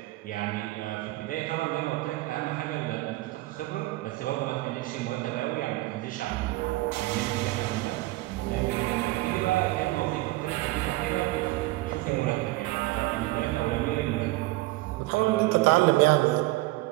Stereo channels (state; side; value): quieter; left; 19.4 dB